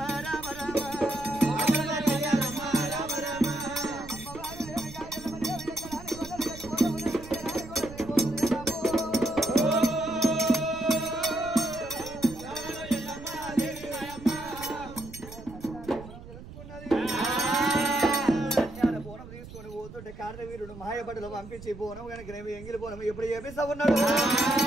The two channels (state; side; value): noise; right; rumble, 15 dB below the sound